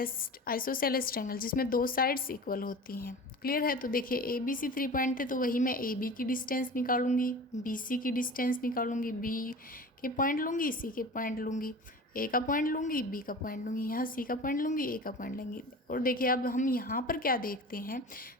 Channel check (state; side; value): normal; both; correlation 0.36